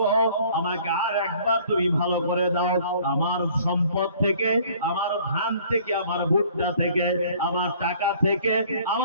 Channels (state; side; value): inverted; both; correlation -0.55